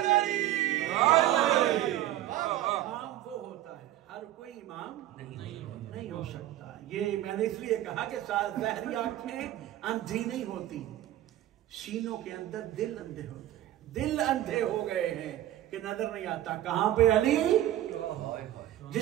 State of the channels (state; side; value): quieter; left; 13.3 dB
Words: امام وہ ہوتا ہے، ہر کوئی امام نہیں ہو سکتا. یہ میں نے اس لیے کہا کہ ظاہری آنکھیں اندھی نہیں ہوتی، سینوں کے اندر دل اندھے ہوتے ہیں. دل اندھے ہو گئے ہیں کہ نظر نہیں آتا کہاں پہ علی،